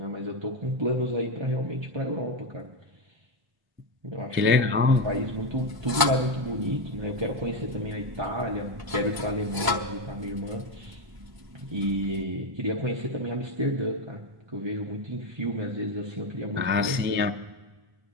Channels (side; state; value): left; late; 1.0 ms